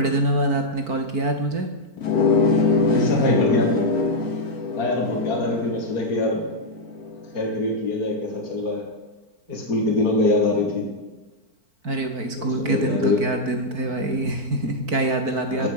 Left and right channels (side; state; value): left; late; 4.4 ms